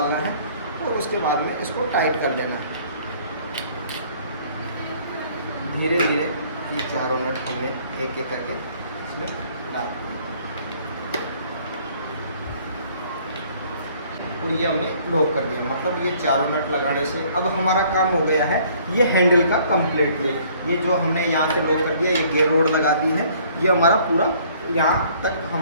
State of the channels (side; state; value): both; inverted; correlation -0.58